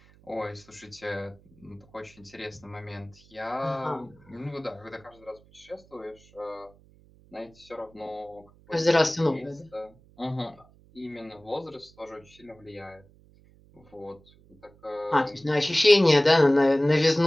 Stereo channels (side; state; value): right; noise; hum, 27 dB below the sound